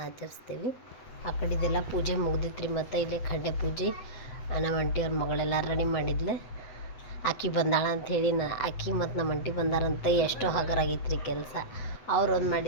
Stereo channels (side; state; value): right; late; 8.0 ms